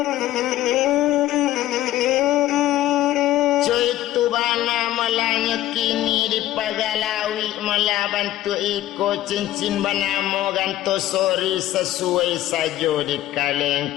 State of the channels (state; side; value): quieter; right; 14.2 dB